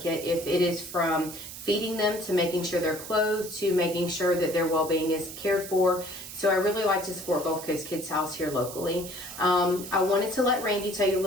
If it is from feeding them to making sure they're clothed to making sure that their well-being is cared for. So I really like to support Gulf Coast Kids House here locally. I wanted to let Randi tell you a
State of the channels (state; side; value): noise; right; hiss, 11 dB below the sound